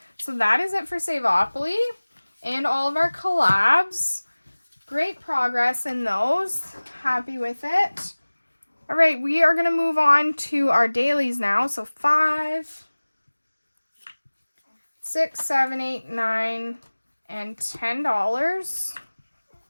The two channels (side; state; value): both; inverted; correlation -1.00